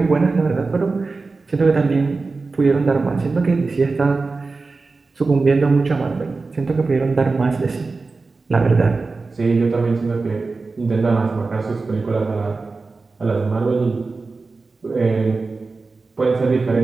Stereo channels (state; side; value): quieter; left; 3.9 dB